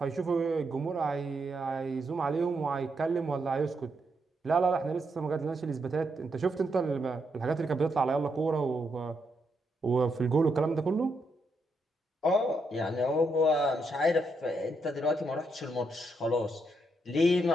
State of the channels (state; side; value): normal; both; correlation 0.80